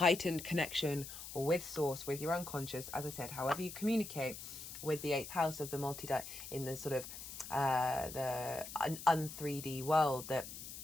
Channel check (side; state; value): left; noise; hiss, 10 dB below the sound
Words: connection with source, with your unconscious, as I said, however you communicate with the 8th house of the in the sort of the un-3D world, that